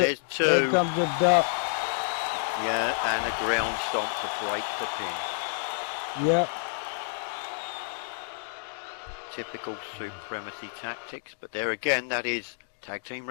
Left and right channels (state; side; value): silent; right; digital silence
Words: two. Here comes the duck. Yeah, and a ground stomp to break the pin. Yep. Typical supremacy tactics, but there again, that is tag team